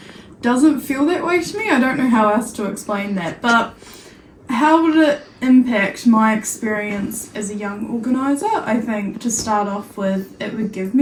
doesn't feel that way to me. I don't know how else to explain that, but how would it impact my experience as a young organiser? I think to start off with, it would give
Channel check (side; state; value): both; identical; correlation 1.00